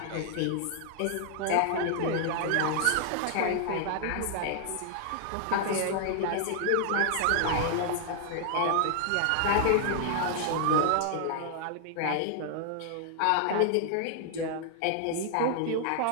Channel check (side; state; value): both; different; correlation 0.00